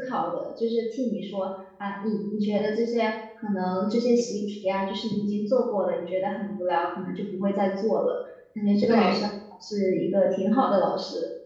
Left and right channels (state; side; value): identical; both; correlation 1.00